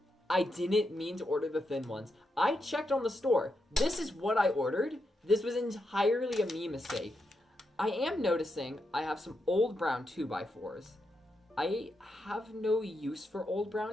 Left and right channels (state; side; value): normal; both; correlation 0.84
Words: I didn't mean to order the thin ones. I checked on the store. This is what I ordered. This was entirely a me mistake. I am noticing I have some old brown 2x4s. I have no use for old